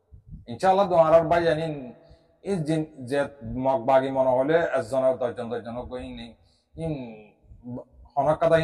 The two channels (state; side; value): identical; both; correlation 1.00